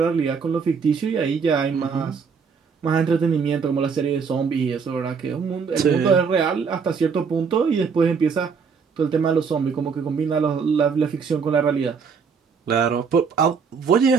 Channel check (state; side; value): quieter; left; 5.8 dB